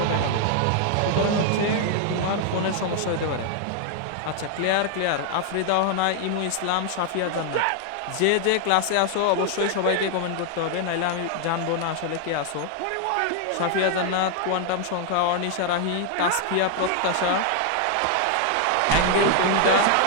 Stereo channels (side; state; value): both; different; correlation 0.00